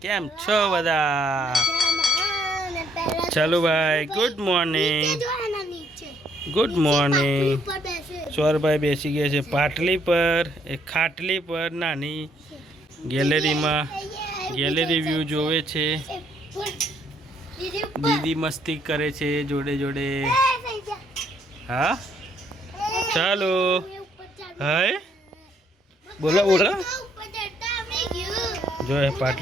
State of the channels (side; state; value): both; normal; correlation 0.68